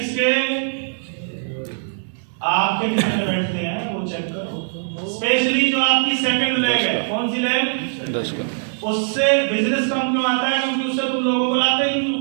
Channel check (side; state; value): left; silent; digital silence